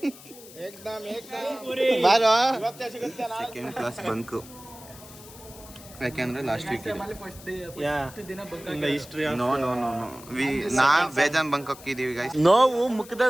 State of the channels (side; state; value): left; noise; hiss, 19 dB below the sound